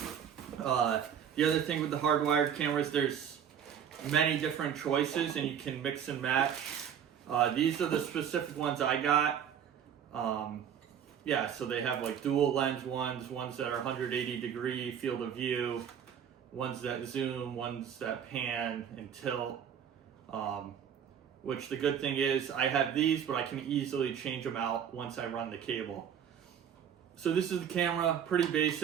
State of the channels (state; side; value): quieter; left; 8.6 dB